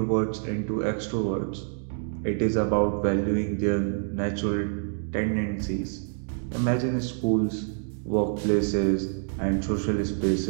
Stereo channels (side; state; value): left; silent; 60 dB below the other